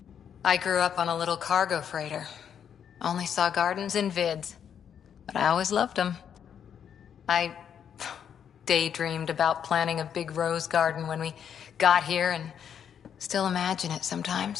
I grew up on a little cargo freighter. Only saw gardens in vids, but I always loved them. I daydreamed about planting a big rose garden when we got here and still imagine it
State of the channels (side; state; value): right; quieter; 8.3 dB